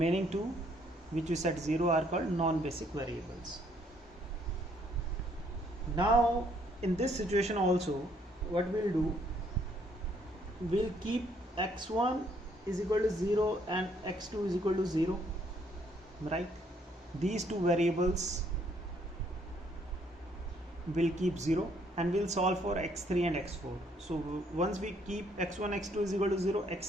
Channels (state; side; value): normal; both; correlation 0.67